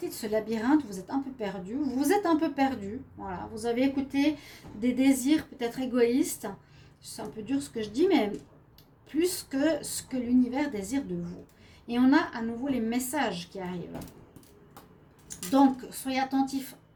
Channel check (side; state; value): both; identical; correlation 1.00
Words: de ce labyrinthe, vous êtes un peu perdu. Vous êtes un peu perdu. Voilà, vous avez écouté des désirs peut-être égoïstes. C'est un peu dur ce que je dis, mais plus que ce que l'univers désire de vous. Et on a à nouveau les messages qui arrivent. Donc, soyez attentifs